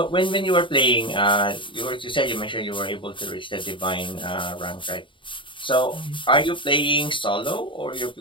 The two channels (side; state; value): right; late; 0.24 ms